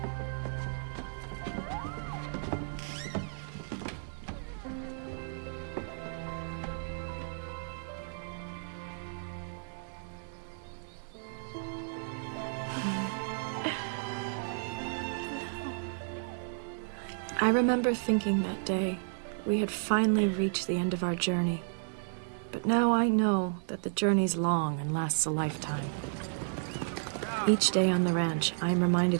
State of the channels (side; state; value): left; silent; digital silence